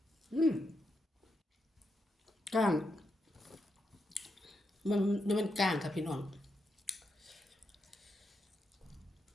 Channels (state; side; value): normal; both; correlation 0.84